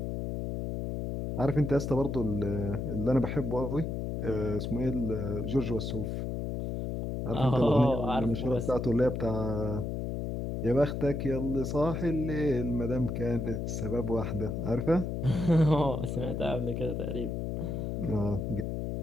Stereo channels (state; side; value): noise; left; hum, 3 dB below the sound